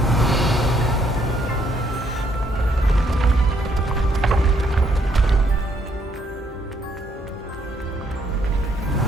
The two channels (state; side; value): normal; both; correlation 0.70